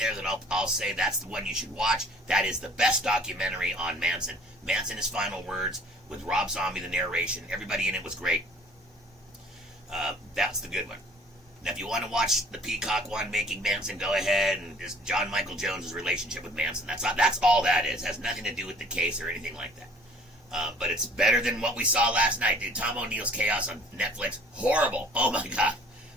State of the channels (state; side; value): normal; both; correlation 0.53